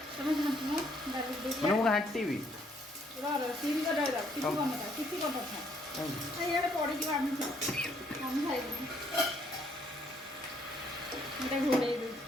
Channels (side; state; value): both; normal; correlation 0.68